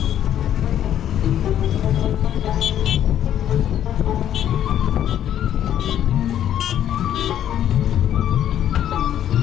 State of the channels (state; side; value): quieter; right; 10.7 dB